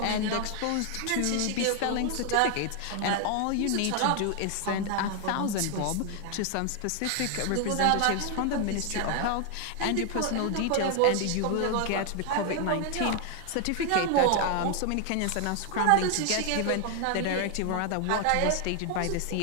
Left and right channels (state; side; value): different; both; correlation 0.00